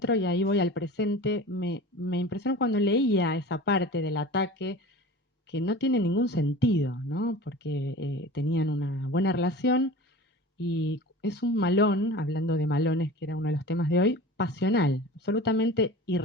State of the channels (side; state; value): both; normal; correlation 0.37